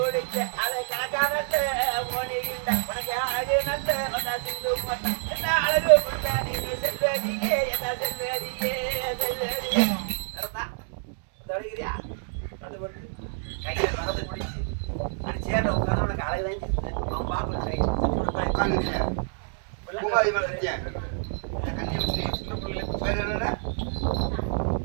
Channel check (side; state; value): left; silent; digital silence